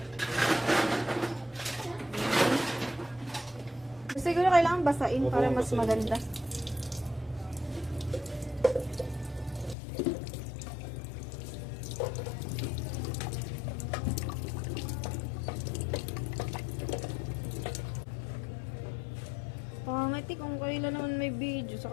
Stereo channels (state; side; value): drops out; right; at 9.8 s